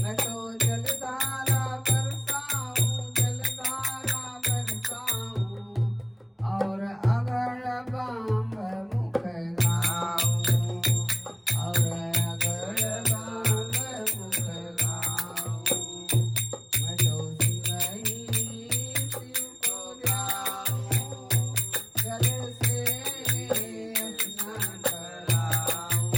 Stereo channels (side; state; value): both; identical; correlation 1.00